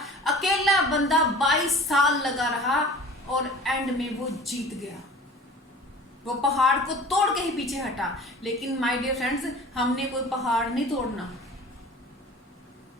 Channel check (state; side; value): normal; both; correlation 0.42